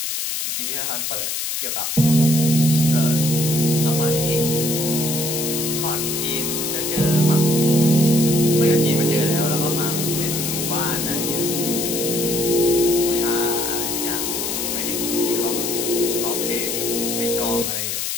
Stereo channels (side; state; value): left; noise; hiss, 2 dB below the sound